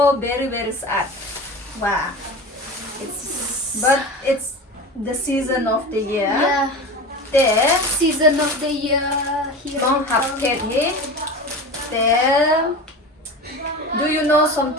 very very sad. Wow. But it's the season of the year. Yeah. There, Season of the year. Here. don't have kid here. There. Do you know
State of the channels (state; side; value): normal; both; correlation 0.30